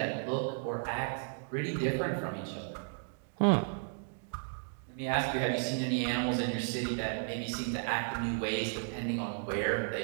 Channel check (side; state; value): left; silent; digital silence